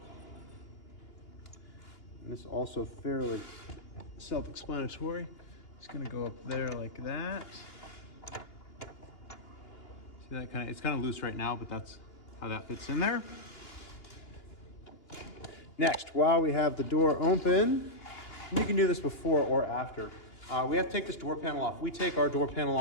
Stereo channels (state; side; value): late; right; 2.9 ms